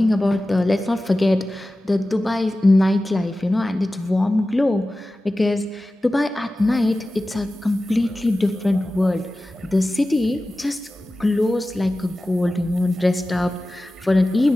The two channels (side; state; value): both; normal; correlation 0.95